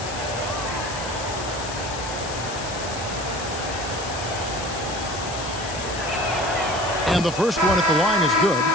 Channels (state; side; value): noise; left; hiss, 10 dB below the sound